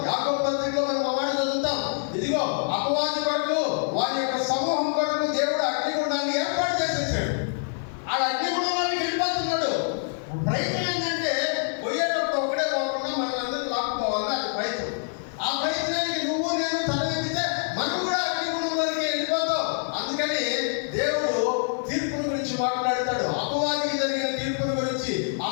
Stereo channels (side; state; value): right; silent; digital silence